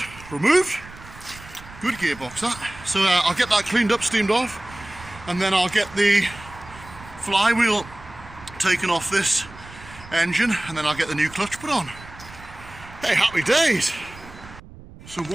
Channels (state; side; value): noise; right; rumble, 18 dB below the sound